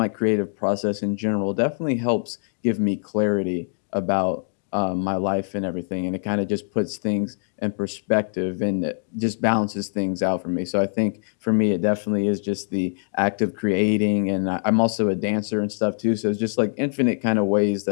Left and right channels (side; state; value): right; silent; digital silence